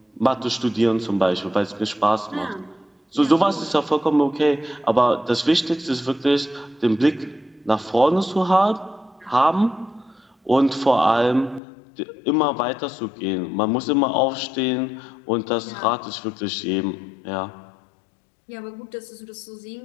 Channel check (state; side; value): drops out; right; at 11.6 s